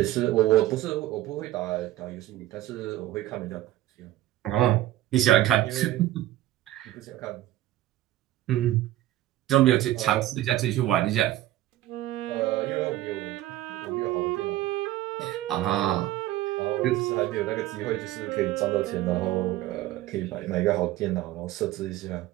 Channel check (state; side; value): quieter; left; 14.7 dB